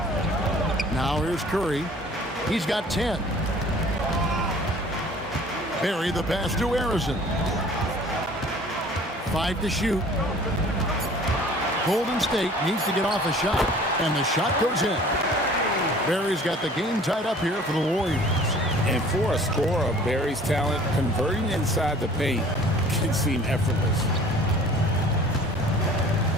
Now here's Curry. He's got 10. Barry the pass to Harrison. 5 to shoot. Golden State needs to get off a shot, and the shot goes in. Barry's got the game tied up here for the Warriors. And for a scorer of Barry's talent, converting inside the paint can seem effortless.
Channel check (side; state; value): both; normal; correlation 0.49